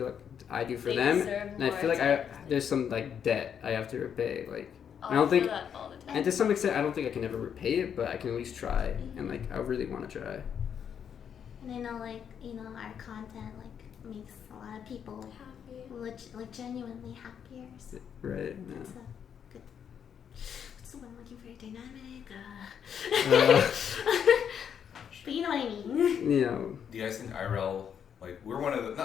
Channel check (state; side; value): quieter; right; 8.1 dB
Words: like I do for They them. deserve And I more feel like attention. there's some like debt I have to repay. Like, Oh, I don't feel think, that all the time. and to some extent, I don't think I can ever repay it, but I can at least try. Mm-hmm. And like, I really want to try. And I know, like, you know, our content like makes a lot of people like genuinely happier. So Right? it's Yeah. a good. What's the one I'm looking for? Dynamic. But you know what I mean. You know, Do you guys think IRL, like, we're one of the,